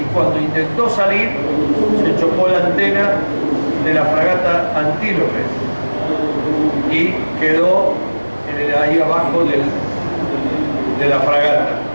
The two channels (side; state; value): both; inverted; correlation -1.00